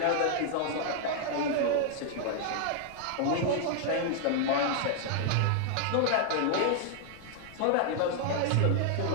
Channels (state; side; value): different; both; correlation 0.00